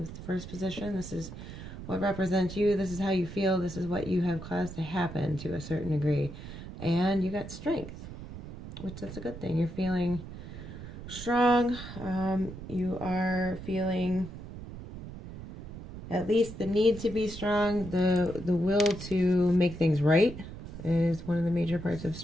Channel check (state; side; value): noise; right; rumble, 12 dB below the sound